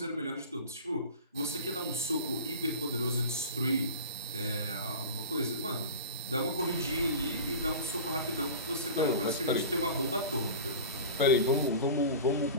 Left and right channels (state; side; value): inverted; both; correlation -0.34